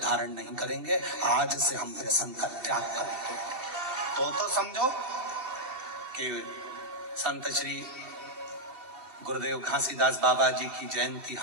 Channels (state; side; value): late; left; 2.8 ms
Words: नहीं करेंगे। आज से हम व्यसन का त्याग करेंगे। तो समझो कि संत श्री गुरुदेव घासीदास बाबा जी की जयंती